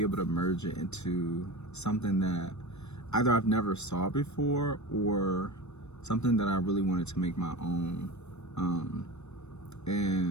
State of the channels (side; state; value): right; late; 0.81 ms